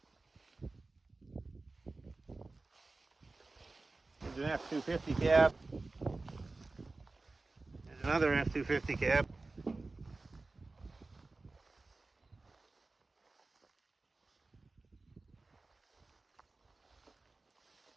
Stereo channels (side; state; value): left; quieter; 3.4 dB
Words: There's an F-250 cab. There's another F-250 cab.